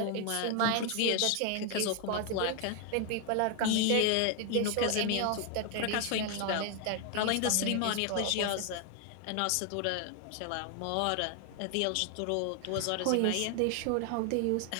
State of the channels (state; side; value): different; both; correlation 0.01